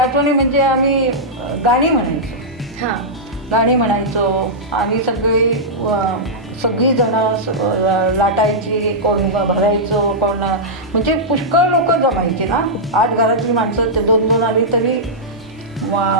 म्हणजे आम्ही गाणी म्हणायचो. गाणी म्हणायचो आणि सगळी जणं लाटायची, कोण भरायचो, कोण म्हणजे पुष्कळ लोक जमायची ना. 8 घरातली माणसं ते 2-2 आली तरी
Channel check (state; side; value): normal; both; correlation -0.11